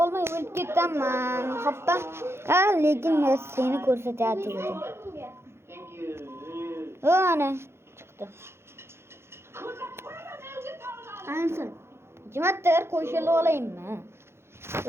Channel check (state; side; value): late; left; 0.12 ms